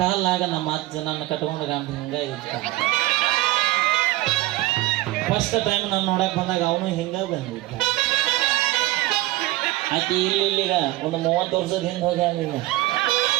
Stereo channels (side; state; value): left; quieter; 17.8 dB